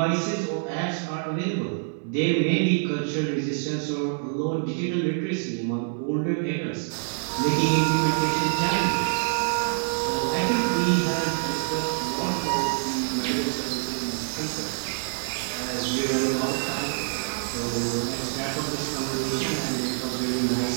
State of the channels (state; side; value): silent; left; 61 dB below the other